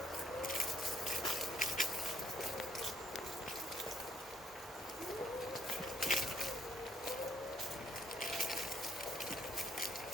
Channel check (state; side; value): normal; both; correlation 0.68